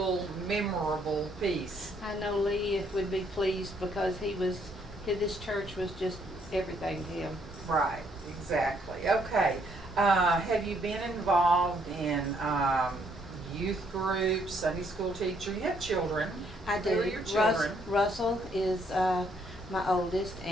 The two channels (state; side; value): normal; both; correlation 0.69